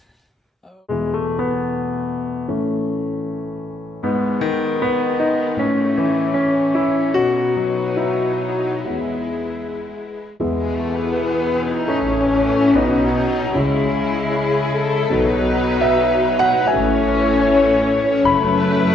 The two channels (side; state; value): both; normal; correlation 0.77